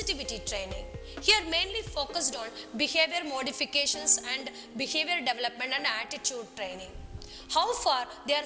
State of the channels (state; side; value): identical; both; correlation 1.00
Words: training. Here mainly focused on behavior modifications and behavior development and attitude training. How far they are